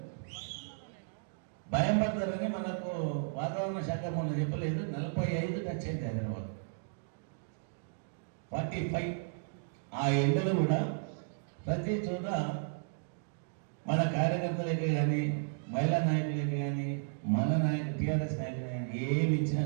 భయం పడతారని మనకు వాతావరణ శాఖ మొన్న చెప్పలేదు. 45 టచ్ అయింది హైదరాబాద్. 45 ఆ ఎండలు కూడా ప్రతి చోట మన కార్యకర్తలకి కానీ మహిళా నాయకులకి కానీ మన నాయకులు టీఆర్ఎస్ నాయకులు కానీ ఏమి ఇచ్చినా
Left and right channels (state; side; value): silent; left; digital silence